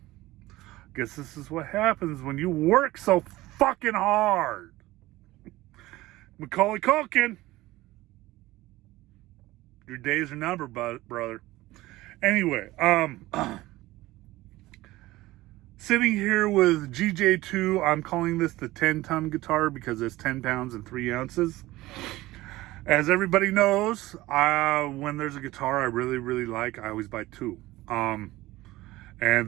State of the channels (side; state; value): left; quieter; 18.1 dB